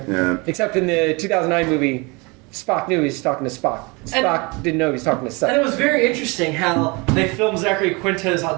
Yeah. Except in the 2009 movie, Spock knew he was talking to Spock. Spock didn't know he was talking to Seth. And it was very interesting how they filmed Zachary Quinto's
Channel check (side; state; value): left; quieter; 27.9 dB